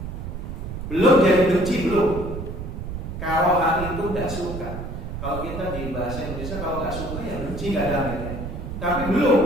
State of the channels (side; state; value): right; noise; rumble, 7 dB below the sound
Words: Belum jadi benci, belum. Karohah itu gak suka. Kalau kita di bahasa Indonesia kalau gak suka ya benci kadang-kadang. Tapi